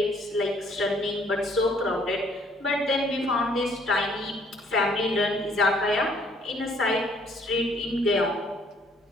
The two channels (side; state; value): both; normal; correlation 0.63